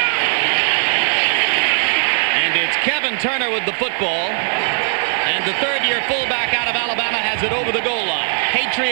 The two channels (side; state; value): left; silent; digital silence